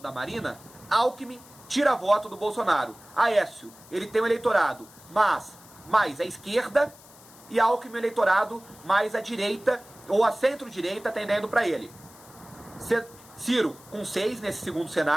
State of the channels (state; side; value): noise; left; hiss, 22 dB below the sound